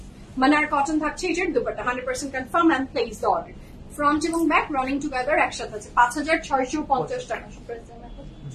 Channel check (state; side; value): identical; both; correlation 1.00